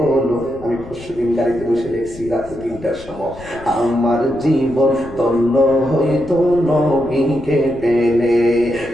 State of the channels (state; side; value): noise; left; rumble, 18 dB below the sound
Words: আমি পরশুদিন গাড়িতে বসে দেখছি রাতে 3টার সময়। আমার জীবন ধন্য হয়তো নবীকে পেলে,